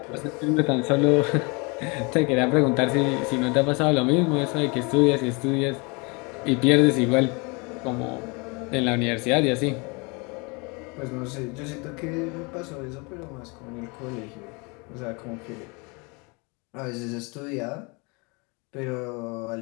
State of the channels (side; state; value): right; quieter; 29.9 dB